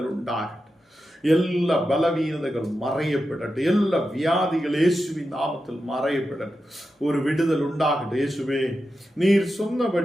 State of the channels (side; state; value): both; normal; correlation 0.90